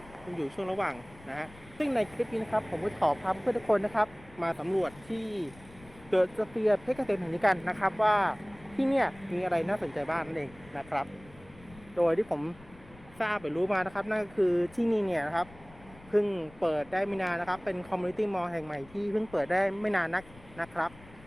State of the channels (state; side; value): noise; left; rumble, 22 dB below the sound